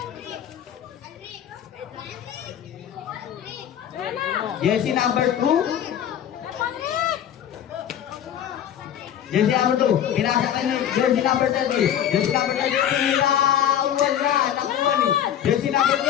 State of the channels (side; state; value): right; quieter; 10.0 dB